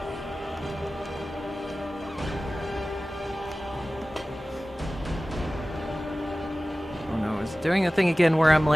doing a thing again where I'm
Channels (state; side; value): normal; both; correlation 0.97